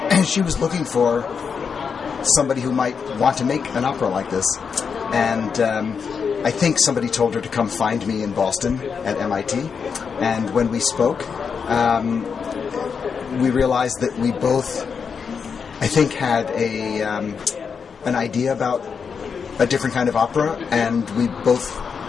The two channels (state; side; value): quieter; right; 6.1 dB